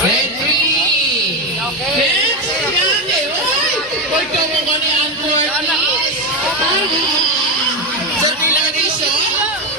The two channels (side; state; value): both; normal; correlation 0.12